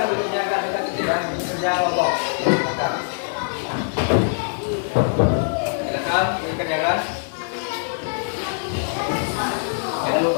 duduknya agak dekat sedikit ya. Kerja kelompok. Silakan dikerjakan. Jangan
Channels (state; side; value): silent; right; digital silence